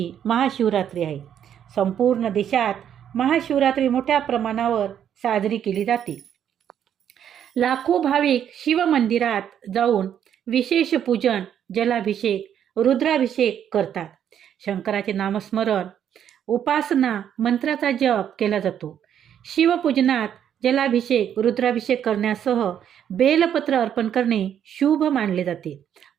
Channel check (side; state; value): left; quieter; 9.4 dB